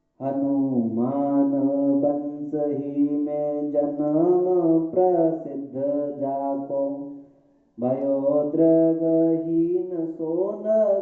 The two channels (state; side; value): identical; both; correlation 1.00